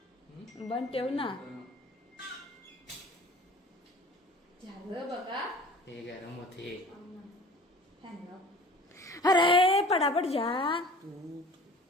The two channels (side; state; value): both; normal; correlation 0.45